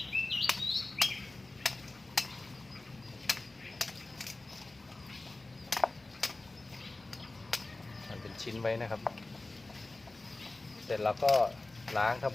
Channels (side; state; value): right; quieter; 3.0 dB